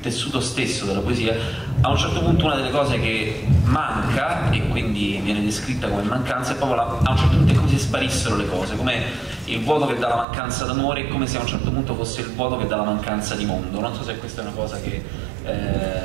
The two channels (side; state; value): left; drops out; at 10.2 s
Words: stesso della poesia, a un certo punto una delle cose che manca, e quindi viene descritta come mancanza, è proprio a un certo punto è come se sparissero le cose, come il vuoto che dà la mancanza d'amore, è come se a un certo punto fosse il vuoto che dà la mancanza di mondo. Non so se questa è una cosa che